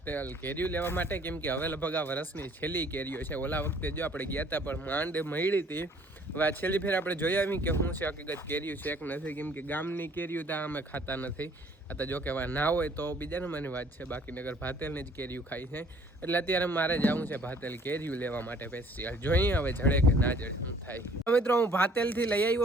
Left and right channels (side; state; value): both; normal; correlation 0.57